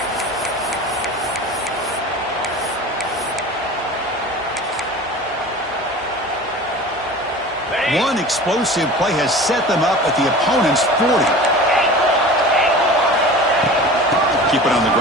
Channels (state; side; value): normal; both; correlation 0.38